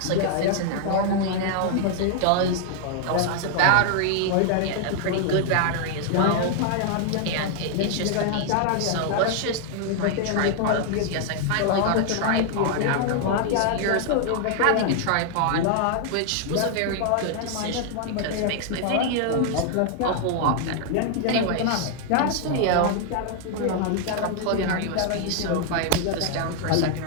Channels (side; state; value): both; different; correlation 0.00